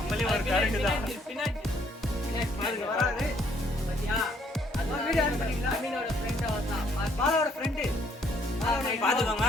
ஒரு கரண்டு தான் பாருங்க வராது. பாத்துக்கோங்க.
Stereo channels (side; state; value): both; normal; correlation 0.66